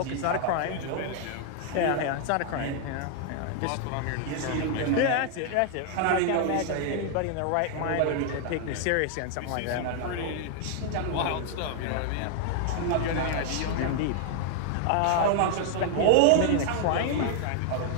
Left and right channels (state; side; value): different; both; correlation 0.00